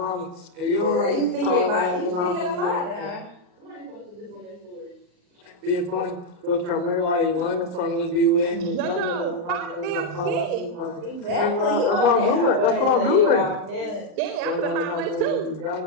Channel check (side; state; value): left; late; 39 ms